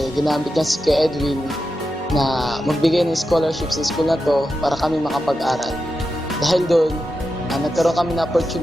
ginamit niya si Kuya Edwin na magbigay ng scholarship sa school na to para kami makapag-aral. Dahil doon, nagkaroon kami ng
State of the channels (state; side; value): normal; both; correlation 0.89